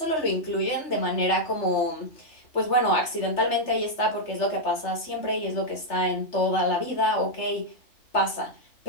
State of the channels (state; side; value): late; right; 3.3 ms